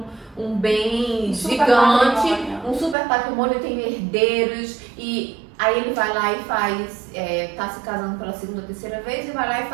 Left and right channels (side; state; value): left; drops out; at 3.0 s